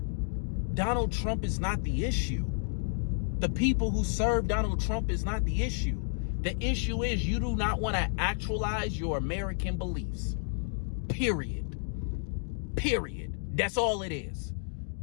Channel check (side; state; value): right; silent; 57 dB below the other